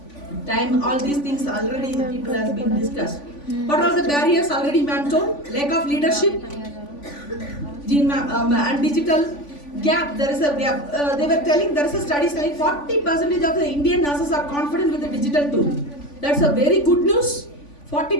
time, all these things already people has been discussed. What are the barriers already ma'am told? Lack of leadership, and digital gap. There is a gap. They were telling, there is a study saying 40% of the Indian nurses are confident with the digital tool. That's a very good news.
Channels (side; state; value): right; late; 3.5 ms